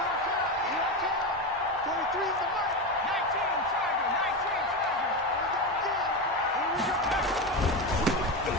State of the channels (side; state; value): both; normal; correlation 0.17